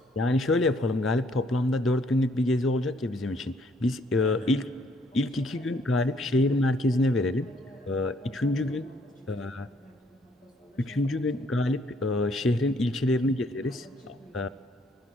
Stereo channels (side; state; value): both; normal; correlation 0.66